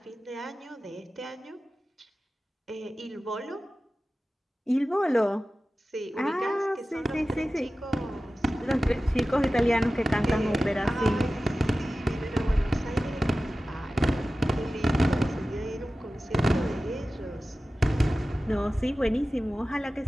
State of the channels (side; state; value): both; normal; correlation 0.95